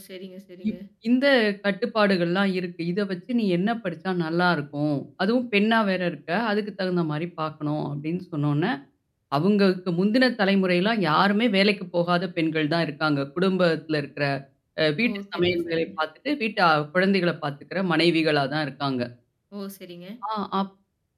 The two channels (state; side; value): identical; both; correlation 1.00